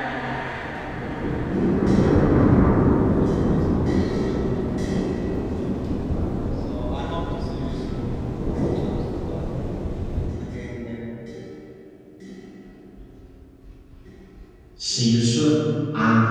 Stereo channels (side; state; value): both; identical; correlation 1.00